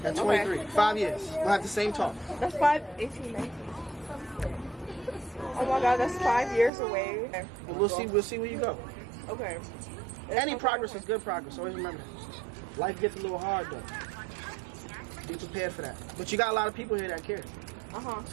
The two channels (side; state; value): left; drops out; at 6.7 s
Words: At 23. Okay. 5 years. We'll have the same talk. That's 18, 19. Oh my God, that's 5 years away. Okay. We'll see where you go. Okay. Any progress is good progress. Always remember that. Life gets a little hard though. Be prepared for that. But you got a lot of people here that care.